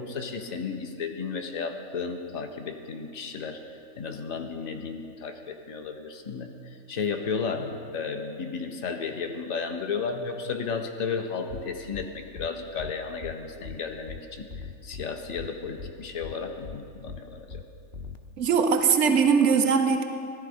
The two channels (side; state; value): left; late; 3.4 ms